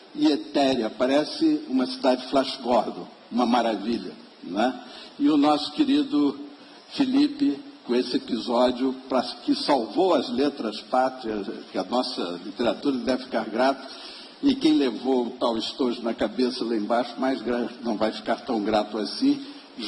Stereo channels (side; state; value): both; identical; correlation 1.00